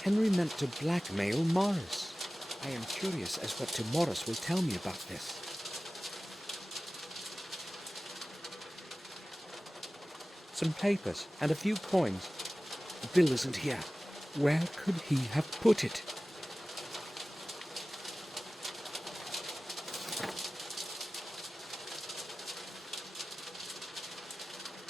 Henry meant to blackmail Morris. I am curious as what Morris will tell me about this. Some papers and a few coins. The bill isn't here. Where could he have put it?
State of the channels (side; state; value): both; normal; correlation 0.97